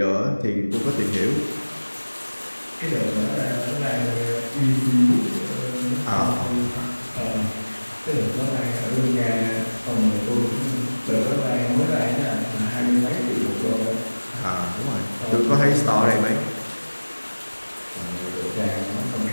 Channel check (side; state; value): both; inverted; correlation -1.00